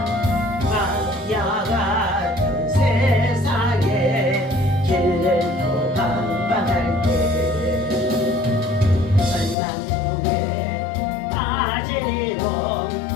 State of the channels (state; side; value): drops out; right; at 9.6 s